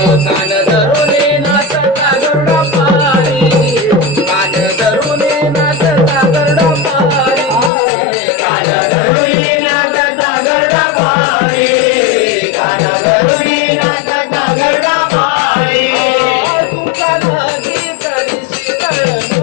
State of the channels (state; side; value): drops out; right; at 7.7 s